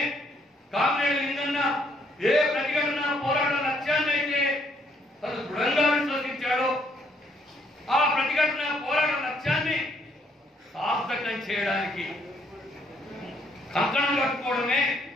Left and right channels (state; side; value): normal; both; correlation 0.69